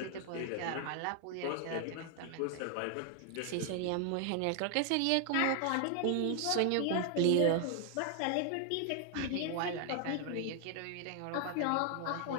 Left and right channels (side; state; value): both; different; correlation 0.00